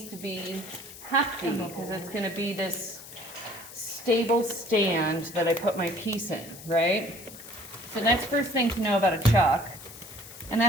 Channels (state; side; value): noise; left; hiss, 15 dB below the sound